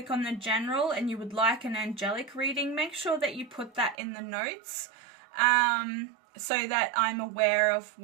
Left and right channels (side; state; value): left; drops out; at 4.0 s